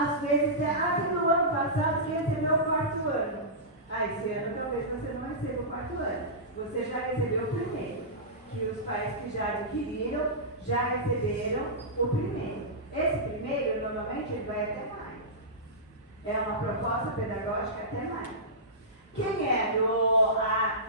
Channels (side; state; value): both; normal; correlation -0.17